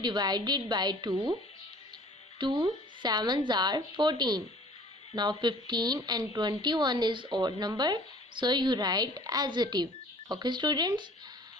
divide it by 2. 2 sevens are 14. Now 15 and 21 is odd number, so you write adjective. Okay students.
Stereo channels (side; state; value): both; normal; correlation 0.50